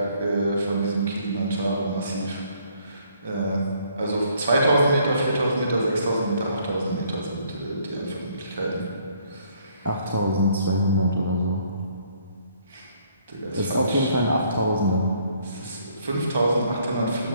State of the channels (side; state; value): both; inverted; correlation -0.65